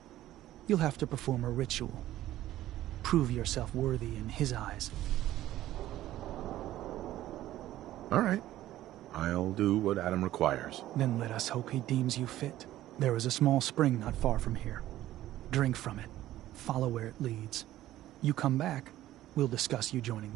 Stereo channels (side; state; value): left; quieter; 14.2 dB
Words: You'll have to perform a ritual. Prove yourself worthy in his eyes. All right. I'll do what Adam requires. Then let us hope he deems you fit. There is a small spring not far from here. Drink from it. Follow where it leads. You come back, we'll discuss you joining